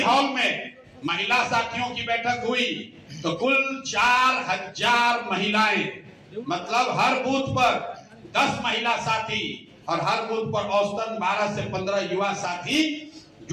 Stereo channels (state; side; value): identical; both; correlation 1.00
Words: में महिला साथियों की बैठक हुई तो कुल 4000 महिलाएं, मतलब हर बूथ पर 10 महिला साथी और हर बूथ पर औसतन 12 से 15 युवा साथी